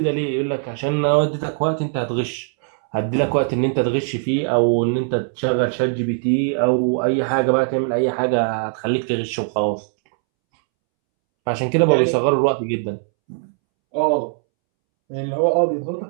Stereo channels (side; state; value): left; silent; 65 dB below the other